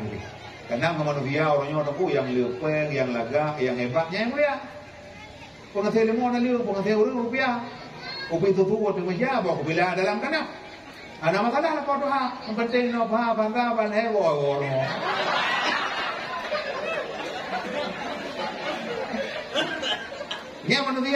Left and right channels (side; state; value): both; identical; correlation 1.00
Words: ini karena manusia orangnya orang yang lepeng yang laga yang hebatnya yang mulia pengasih lemon lalu pengasih rupiah kopi itu waktu menjawab kopi lah dalam tanah ada masalah lah kau doa yang penting nopa bangga banai orang dia